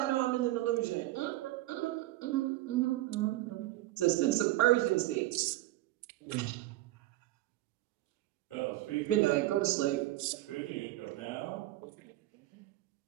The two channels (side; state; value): left; quieter; 16.8 dB